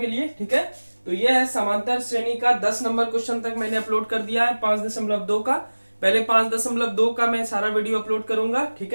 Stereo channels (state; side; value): inverted; both; correlation -1.00